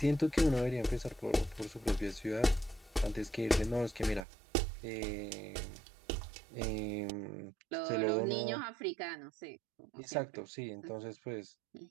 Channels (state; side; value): drops out; left; at 4.2 s